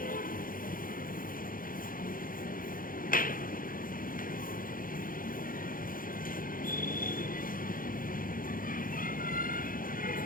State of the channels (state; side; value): late; right; 0.41 ms